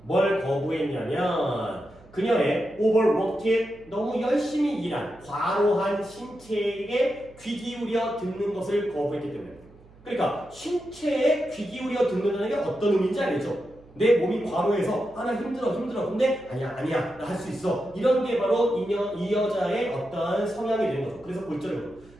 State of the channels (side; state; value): right; noise; hum, 25 dB below the sound